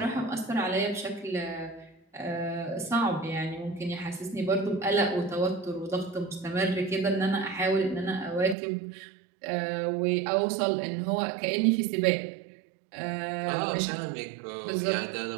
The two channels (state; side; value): drops out; left; at 8.6 s